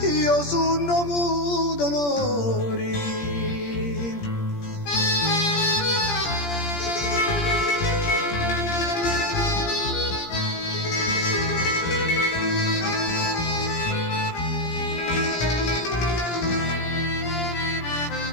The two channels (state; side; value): late; right; 17 ms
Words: io sono muto onori.